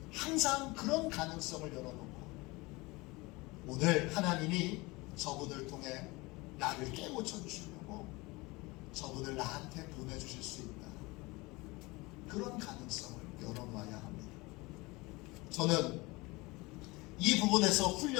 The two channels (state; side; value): quieter; right; 23.6 dB